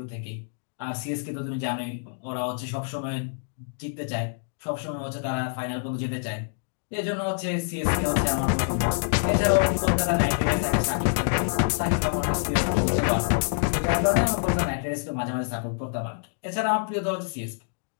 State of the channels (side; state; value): right; silent; digital silence